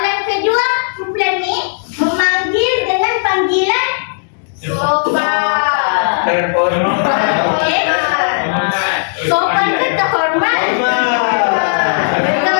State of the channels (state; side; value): silent; right; digital silence